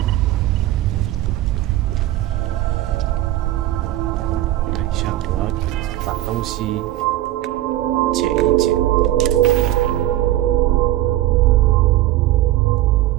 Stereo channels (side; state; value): left; quieter; 14.6 dB